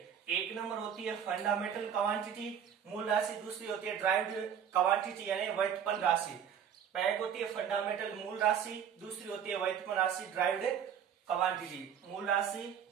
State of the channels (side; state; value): left; quieter; 8.4 dB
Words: एक नंबर होती है फंडामेंटल क्वांटिटी मूल राशि, दूसरी होती है ड्राइव्ड क्वांटिटी यानी व्युत्पन्न राशि। पहली होती है फंडामेंटल मूल राशि, दूसरी होती है व्युत्पन्न राशि ड्राइव्ड क्वांटिटी। मूल राशि